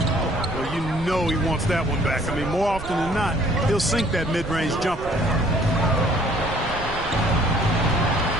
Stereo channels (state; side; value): noise; right; rumble, 12 dB below the sound